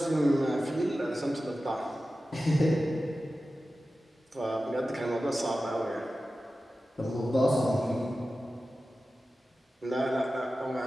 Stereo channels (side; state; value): both; normal; correlation 0.94